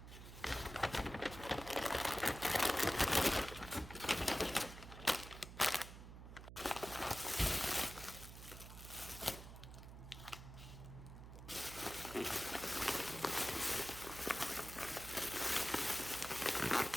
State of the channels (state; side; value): noise; right; hum, 13 dB below the sound